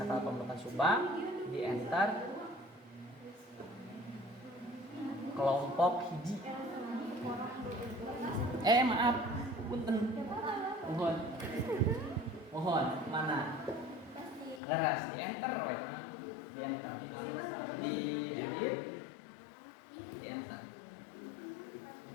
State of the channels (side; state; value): right; drops out; at 14.6 s